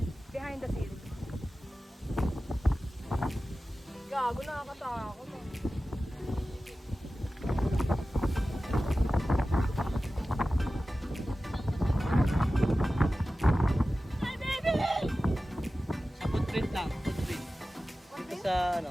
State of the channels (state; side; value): normal; both; correlation 0.95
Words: Behind the scenes. Gago, nakakatakot. sa, ano,